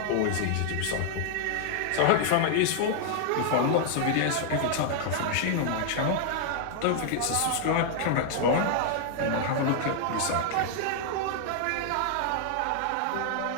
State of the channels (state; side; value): different; both; correlation 0.00